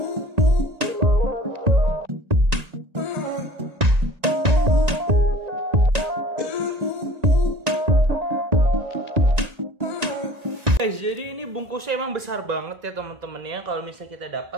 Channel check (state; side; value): late; left; 1.9 ms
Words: Guys, jadi ini bungkusnya emang besar banget ya teman-teman ya. Kalau misalnya kita